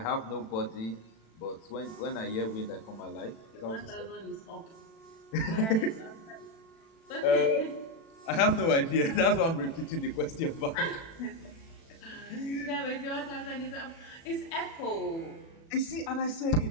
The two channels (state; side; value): late; right; 36 ms